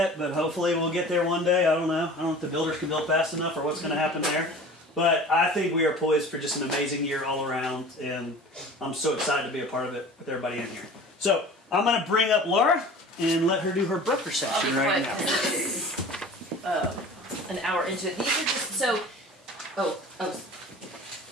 but hopefully we'll get there one day. I don't know. I don't know if the builders can build fast enough or what's going to happen there. But I think we are poised for just an amazing year all around, and I'm so excited to be a part of it with everybody in here. So I'm going to bring up Laura and let her do her broker section right now. An hour into it. These are just so.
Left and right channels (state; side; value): normal; both; correlation 0.41